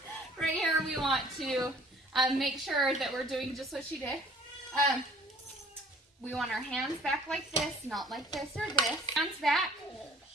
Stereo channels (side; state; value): both; normal; correlation 0.54